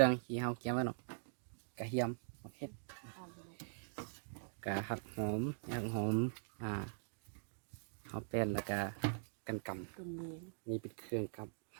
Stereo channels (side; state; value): left; silent; digital silence